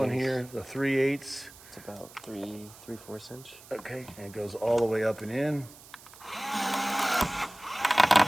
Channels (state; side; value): noise; right; hiss, 20 dB below the sound